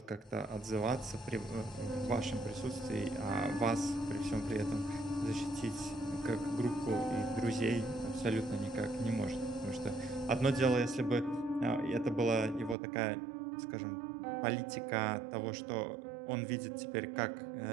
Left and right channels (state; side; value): drops out; left; at 12.8 s